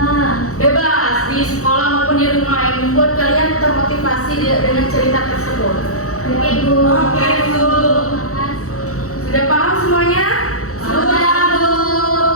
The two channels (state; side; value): late; right; 0.65 ms